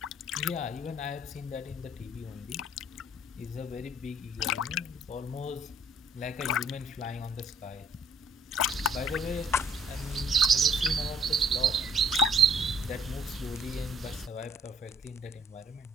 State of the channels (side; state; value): both; normal; correlation 0.60